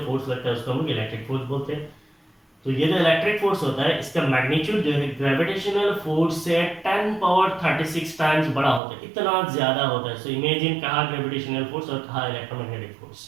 फोर्स लगता है उसको हम इलेक्ट्रिक फोर्स बोलते हैं। तो ये जो इलेक्ट्रिक फोर्स होता है इसका मैग्नीट्यूड जो है ग्रेविटेशनल फोर्स से 10 पावर 36 टाइम्स बड़ा होता है, इतना ज्यादा होता है। सो इमेजिन कहाँ ग्रेविटेशनल फोर्स और कहाँ इलेक्ट्रोमैग्नेटिक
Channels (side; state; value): left; drops out; at 8.8 s